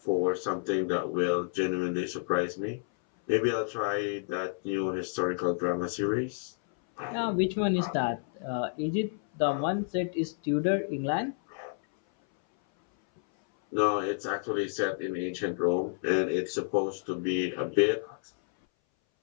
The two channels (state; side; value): silent; right; 58 dB below the other